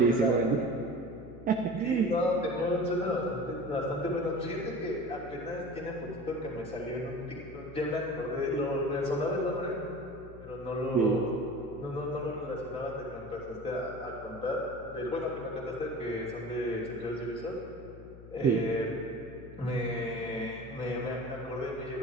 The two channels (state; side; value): noise; left; hum, 16 dB below the sound